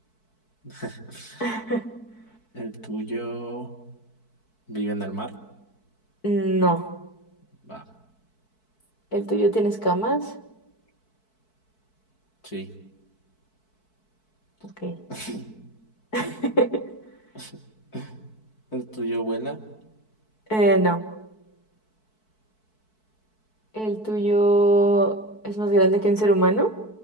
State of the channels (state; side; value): late; right; 4.6 ms